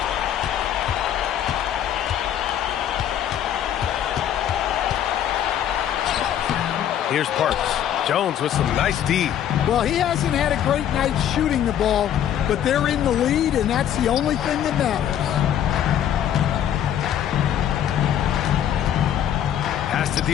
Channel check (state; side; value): quieter; right; 10.2 dB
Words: Here's Parks. Jones with some nice D. Well, he hasn't had a great night shooting the ball, but they're in the lead, and that's the only thing that matters. Pass to